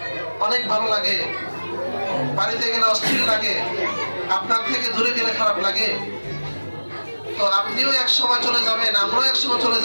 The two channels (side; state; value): both; inverted; correlation -1.00